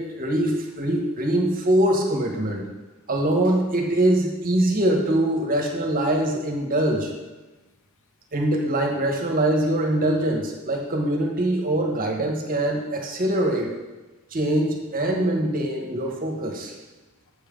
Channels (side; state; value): both; normal; correlation 0.52